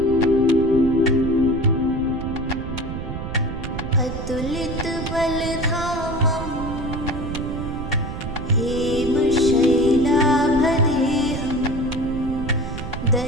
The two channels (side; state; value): right; noise; rumble, 6 dB below the sound